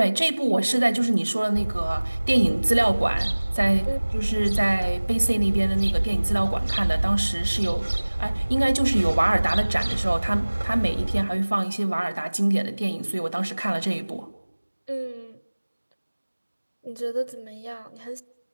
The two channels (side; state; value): both; inverted; correlation -1.00